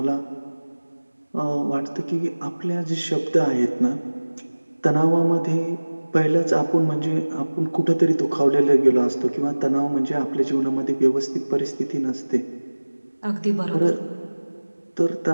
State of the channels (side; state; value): both; inverted; correlation -1.00